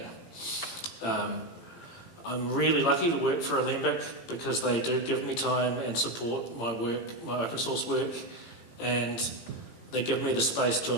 I'm really lucky to work for Alembic because they do give me time and support my work, my open source work, and they give me the space to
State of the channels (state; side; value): late; right; 18 ms